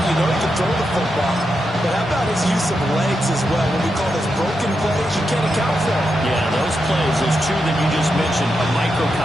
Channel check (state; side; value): normal; both; correlation 0.86